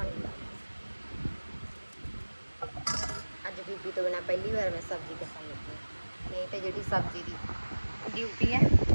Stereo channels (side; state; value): both; inverted; correlation -1.00